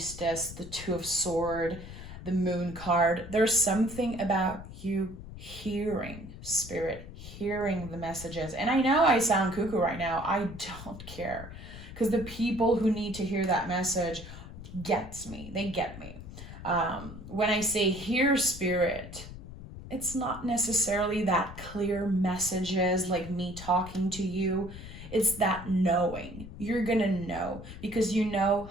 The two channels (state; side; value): noise; left; rumble, 13 dB below the sound